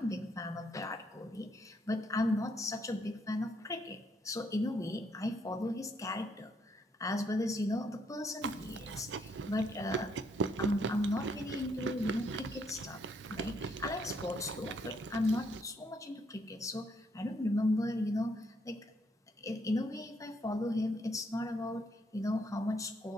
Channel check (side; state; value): both; normal; correlation 0.72